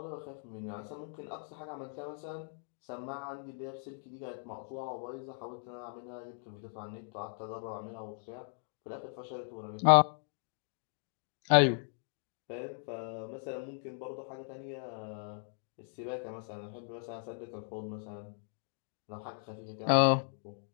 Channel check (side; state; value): right; silent; 53 dB below the other